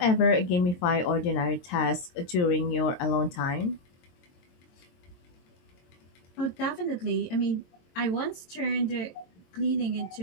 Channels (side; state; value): right; late; 22 ms